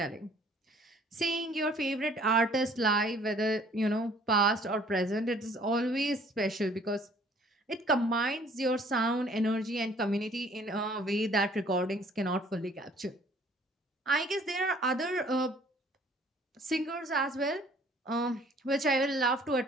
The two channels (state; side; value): normal; both; correlation 0.57